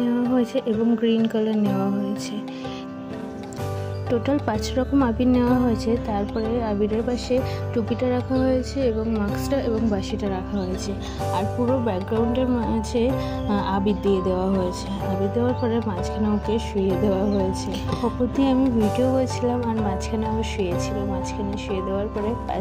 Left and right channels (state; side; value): identical; both; correlation 1.00